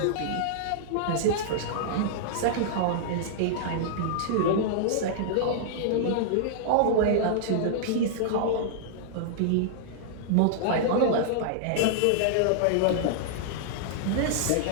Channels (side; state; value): both; different; correlation -0.02